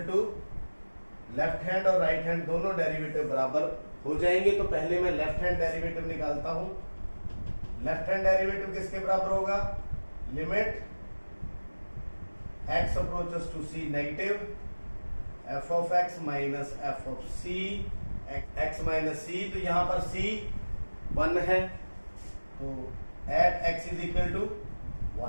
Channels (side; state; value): both; inverted; correlation -1.00